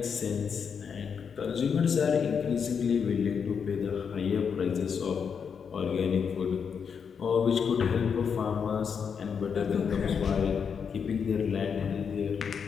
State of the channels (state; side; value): quieter; right; 6.6 dB